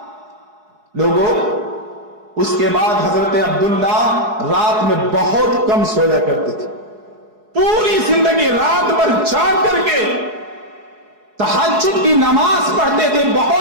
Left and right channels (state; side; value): late; left; 4.7 ms